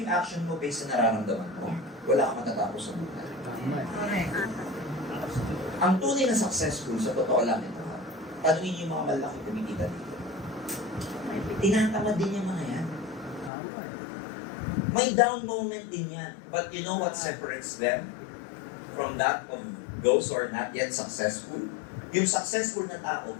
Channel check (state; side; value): drops out; right; at 13.5 s